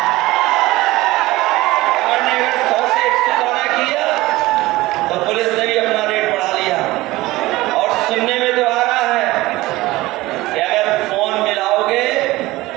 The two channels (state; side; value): quieter; left; 18.9 dB